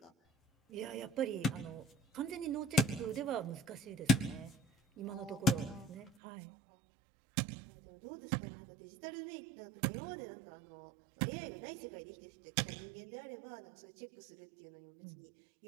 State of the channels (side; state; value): left; drops out; at 6.1 s